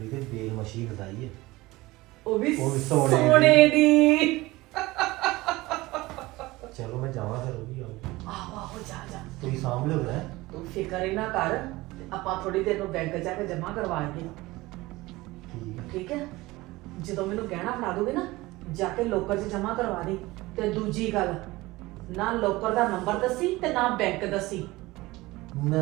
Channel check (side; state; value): left; quieter; 20.0 dB